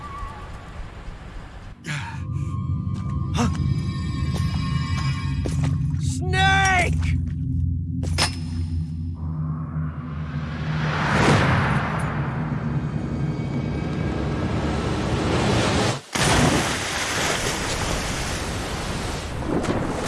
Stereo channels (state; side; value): identical; both; correlation 1.00